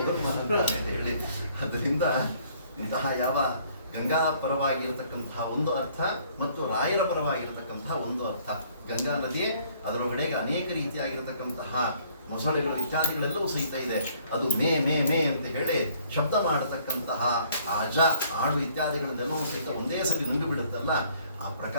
ಹೇಳಿ, ಅದರಿಂದ ಇಂತಹ ಯಾವ ಗಂಗಾ ಪರವಾಗಿರತಕ್ಕಂತಹ ಒಂದು ಅರ್ಥ ಮತ್ತು ರಾಯರ ಪರವಾಗಿರತಕ್ಕಂತಹ ಒಂದು ಅರ್ಥ. ಗಂಗಾ ನದಿ ಅದರೊಳಗಡೆಗೆ ಅನೇಕ ರೀತಿಯಾಗಿರತಕ್ಕಂತಹ ಮೊಸಳೆಗಳು ಇತ್ಯಾದಿಗಳೆಲ್ಲವೂ ಸಹಿತ ಇದೆ. ಅದು ಮೇ ಮೇ ಮೇ ಅಂತ ಹೇಳಿ ಶಬ್ದ ಮಾಡತಕ್ಕಂತಹ ಅಜ ಆಡು ಇತ್ಯಾದಿಗಳನ್ನೆಲ್ಲವೂ ಸಹಿತ ಒಂದೇ ಸರಿ ನುಂಗಿ ಬಿಡುತ್ತಲ್ಲ, ಆ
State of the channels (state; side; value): inverted; both; correlation -0.62